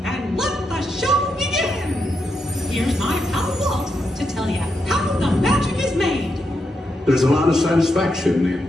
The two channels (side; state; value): both; normal; correlation 0.83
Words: And let the show begin! Here's my pal Walt to tell you how the magic is made. There's a lot of satisfaction in